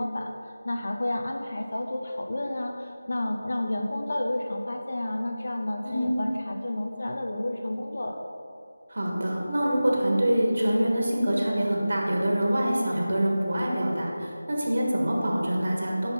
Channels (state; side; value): inverted; both; correlation -0.97